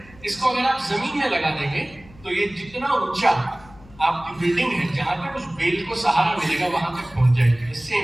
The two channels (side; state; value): left; noise; hum, 23 dB below the sound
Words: इसको अगर आप जमीन में लगा देंगे तो ये जितना ऊंचा आपकी बिल्डिंग है, जहां तक उस बेल को सहारा मिलेगा वहां तक पहुंच जाएगी।